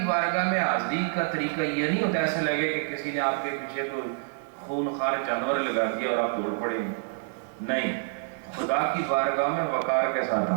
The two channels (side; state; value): left; silent; 56 dB below the other